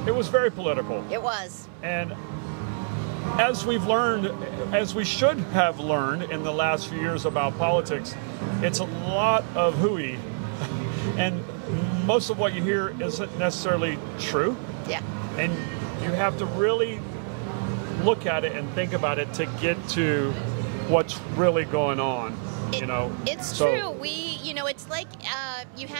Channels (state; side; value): silent; left; 61 dB below the other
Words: was very political. It was. And as we've learned, as we should have learned in the last few years about politics, it's a lot of hooey, and most of what you hear isn't necessarily true. Yeah. And you have to really look at it and think about it to get to what's really going on. It's true. It's like you